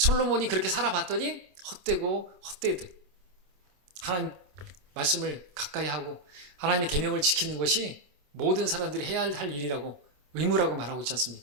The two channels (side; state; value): left; late; 27 ms